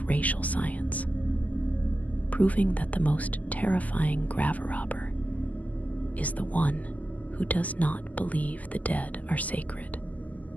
racial science, proving that the most terrifying graverobber is the one who does not believe the dead are sacred,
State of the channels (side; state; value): right; late; 0.074 ms